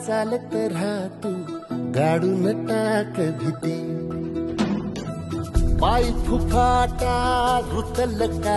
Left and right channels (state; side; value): identical; both; correlation 1.00